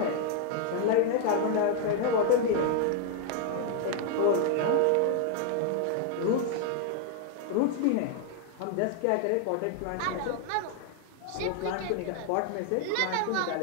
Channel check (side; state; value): both; different; correlation 0.00